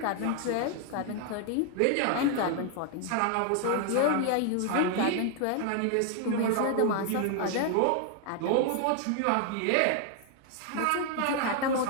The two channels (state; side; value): different; both; correlation 0.00